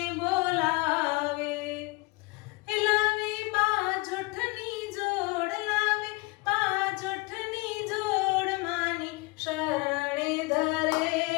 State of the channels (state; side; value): quieter; right; 25.9 dB